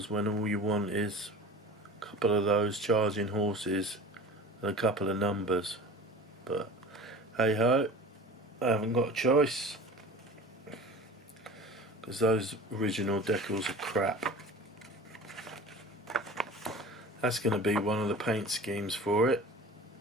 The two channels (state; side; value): normal; both; correlation 0.38